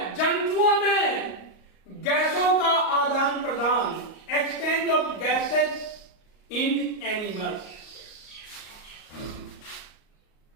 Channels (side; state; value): right; late; 38 ms